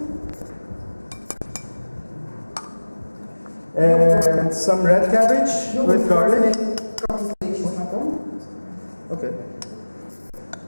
And some red cabbage with garlic. Капустой и чесноком. Okay.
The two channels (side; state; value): both; inverted; correlation -1.00